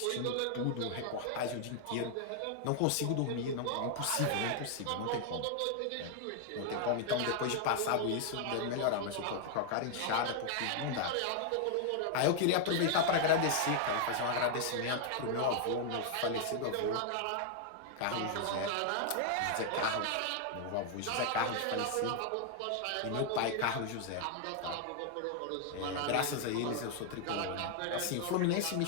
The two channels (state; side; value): different; both; correlation 0.00